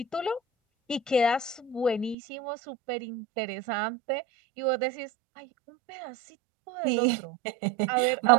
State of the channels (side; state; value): left; drops out; at 2.1 s